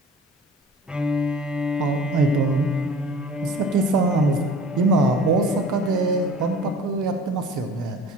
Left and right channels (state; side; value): normal; both; correlation 0.43